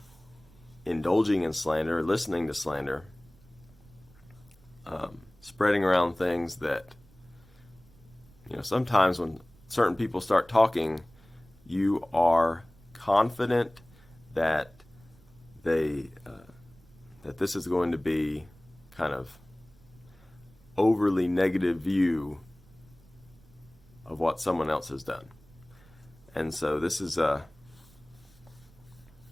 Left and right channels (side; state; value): right; noise; rumble, 26 dB below the sound